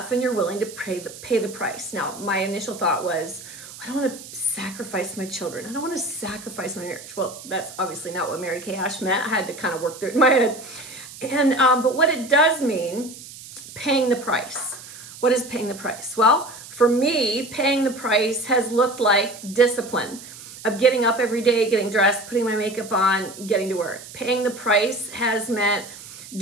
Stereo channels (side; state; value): right; noise; hiss, 15 dB below the sound